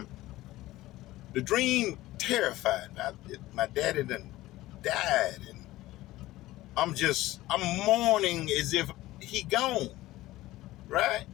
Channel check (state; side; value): quieter; right; 17.0 dB